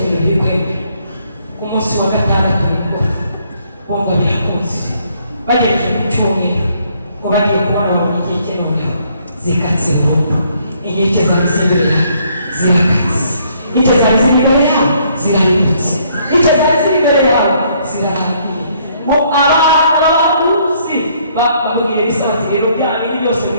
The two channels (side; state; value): both; inverted; correlation -0.67